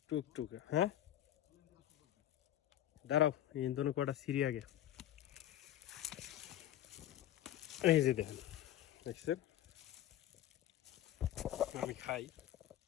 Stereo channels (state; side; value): quieter; right; 12.4 dB